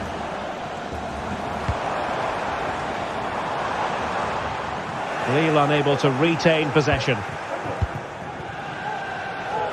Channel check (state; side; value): identical; both; correlation 1.00